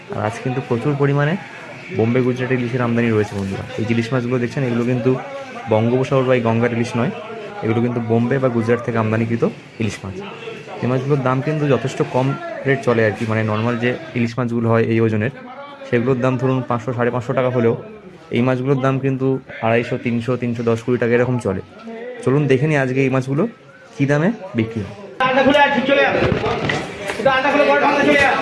আর আজকে কিন্তু প্রচুর পরিমাণে বোম্বে গুজরাটি ইলিশের আমদানি রয়েছে বন্ধুরা। এই যে ইলিশ মাছগুলো দেখছেন, এগুলো কিন্তু বঙ্গোপসাগর বা এই গঙ্গার ইলিশ নয়, এগুলো কিন্তু বোম্বে বা গুজরাট থেকে আমদানিকৃত ইলিশ মাছ। এই মাছগুলোর দাম কিন্তু যথেষ্ট কম রেট চলে আর কি, মানে নর্মাল যে ইলিশ মাছগুলো হয় এই ওজনের, সেগুলোর দাম ধরুন 500 550 টাকা হলেও এই মাছগুলোর দাম কিন্তু 250, 300, 310, 20 টাকা এরকম চলে। চলুন দেখে নিই আজকে এই মাছগুলো কী দামে বিক্রি হয়।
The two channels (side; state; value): both; identical; correlation 1.00